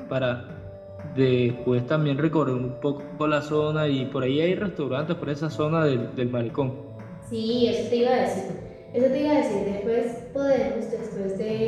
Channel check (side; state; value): both; identical; correlation 1.00